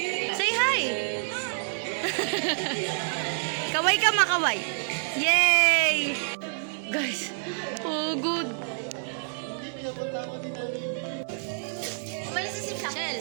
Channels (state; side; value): silent; left; digital silence